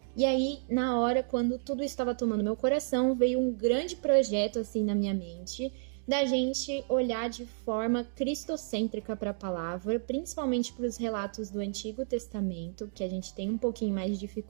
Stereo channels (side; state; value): left; silent; digital silence